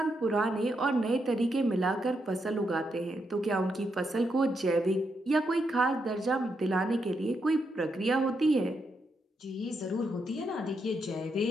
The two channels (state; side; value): normal; both; correlation 0.81